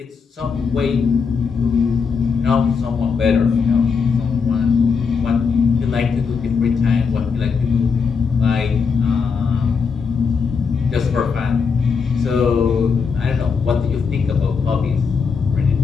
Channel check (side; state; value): right; quieter; 5.6 dB